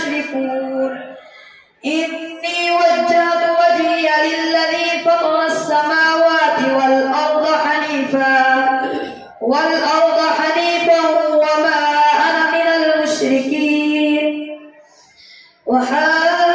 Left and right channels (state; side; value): identical; both; correlation 1.00